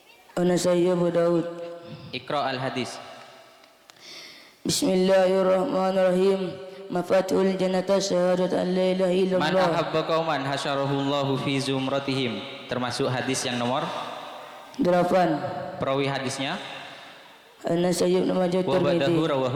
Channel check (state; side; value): identical; both; correlation 1.00